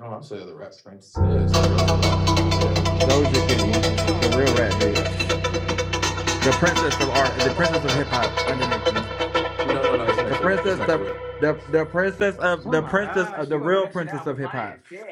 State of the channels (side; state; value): both; identical; correlation 1.00